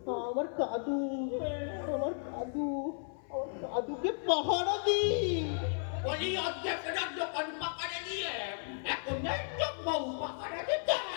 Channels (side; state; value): right; silent; 55 dB below the other